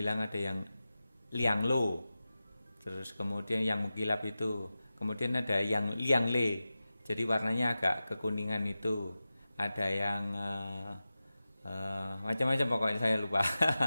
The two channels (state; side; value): inverted; both; correlation -0.95